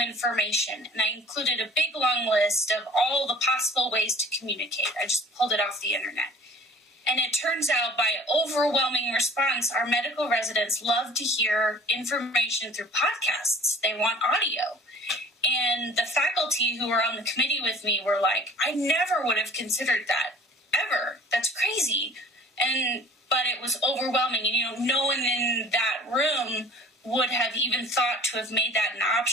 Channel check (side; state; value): both; normal; correlation 0.48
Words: And I included a big long list of all the possible ways to communicate. I just pulled it off the internet. And it turns out by overwhelming response, our medical residents love to hear information through podcasts. They want audio. And the faculty who were on the committee with me were like, I never would have considered that, ever. That's crazy. But it was overwhelming. And, no one in that room would have even thought to have made that an